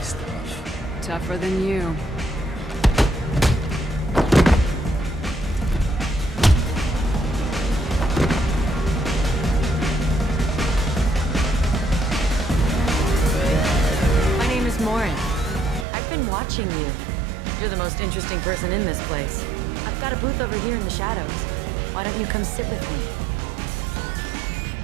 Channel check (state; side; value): drops out; left; at 15.9 s